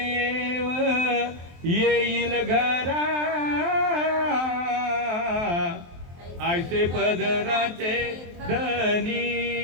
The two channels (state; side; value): late; left; 23 ms